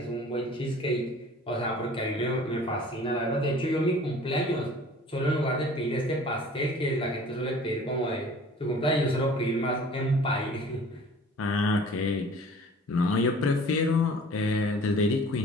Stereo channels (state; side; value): normal; both; correlation 0.48